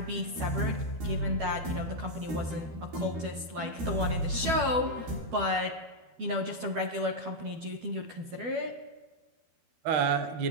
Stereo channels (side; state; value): left; late; 12 ms